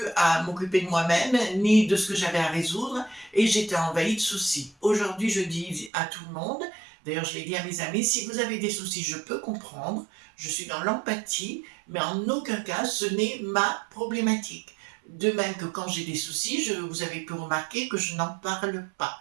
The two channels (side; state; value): left; drops out; at 5.9 s